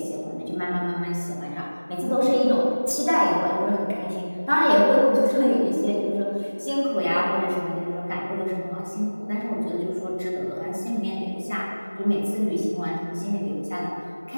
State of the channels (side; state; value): both; inverted; correlation -1.00